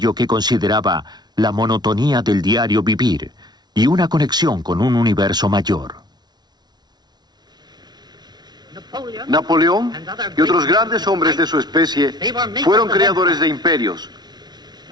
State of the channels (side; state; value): left; late; 0.20 ms